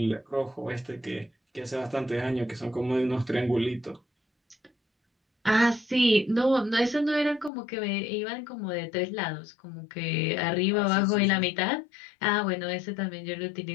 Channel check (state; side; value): drops out; right; at 7.5 s